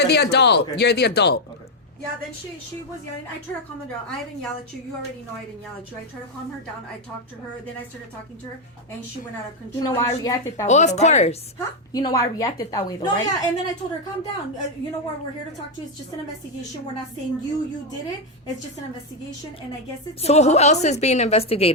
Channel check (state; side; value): normal; both; correlation 0.03